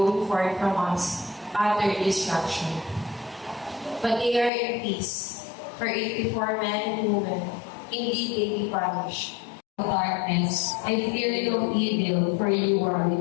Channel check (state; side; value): drops out; right; at 4.5 s